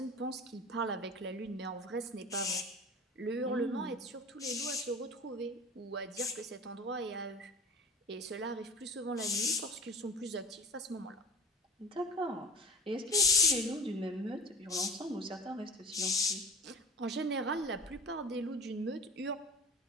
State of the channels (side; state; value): both; normal; correlation 0.38